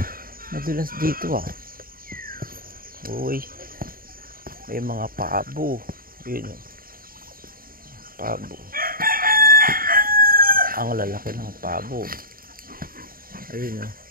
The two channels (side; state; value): left; late; 0.42 ms